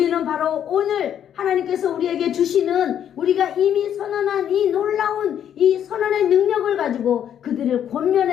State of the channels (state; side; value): quieter; right; 9.6 dB